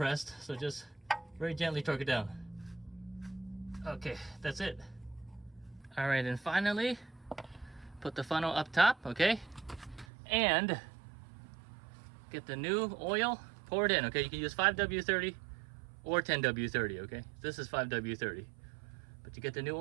So just very gently torque it down. Okay, that's it. All right, and finally, put the funnel up top, okay? And get the new oil, pour it in, okay? You can use 5W30 or 10W30, okay? This is 5W30. But you get the new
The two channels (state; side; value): drops out; left; at 10.1 s